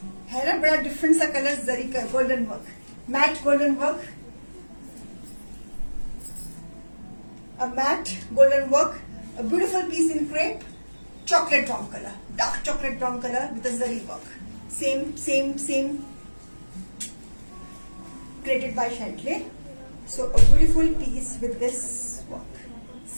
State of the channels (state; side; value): inverted; both; correlation -1.00